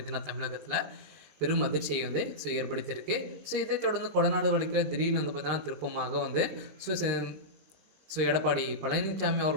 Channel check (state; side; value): late; left; 20 ms